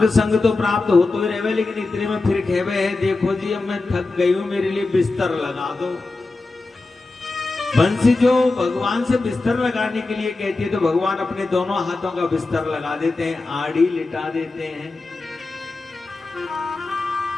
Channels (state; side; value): quieter; right; 3.4 dB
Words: संग तो प्राप्त हो तो ही रहवे, लेकिन इतने में फिर कहवे है, देखो जी अब मैं थक गई हूं, मेरे लिए बिस्तर लगा दो। बंसी जो भगवान से बिस्तर लगाने के लिए कहती है तो भगवान अपने दोनों हाथों का बिस्तर लगा देते हैं, आड़ी लिटा देते हैं।